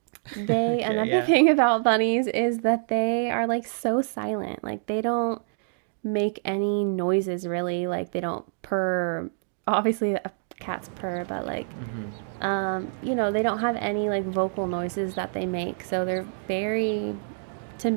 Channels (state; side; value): silent; left; digital silence